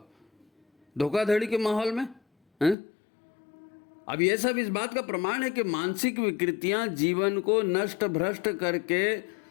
धोखाधड़ी के माहौल में हैं? अब ये सब इस बात का प्रमाण है कि मानसिक विकृतियां जीवन को नष्ट भ्रष्ट करके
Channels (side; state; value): right; drops out; at 2.8 s